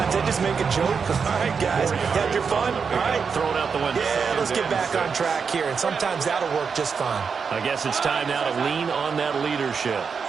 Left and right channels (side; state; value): left; quieter; 5.9 dB